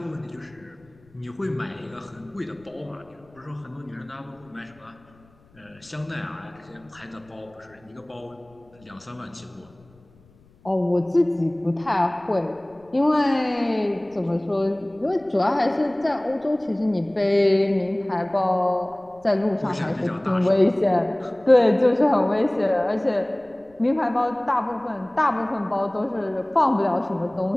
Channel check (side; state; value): left; noise; rumble, 29 dB below the sound